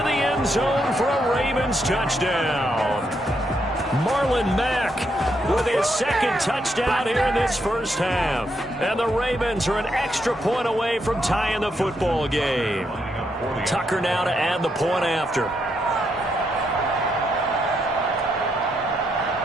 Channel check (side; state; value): both; normal; correlation 0.78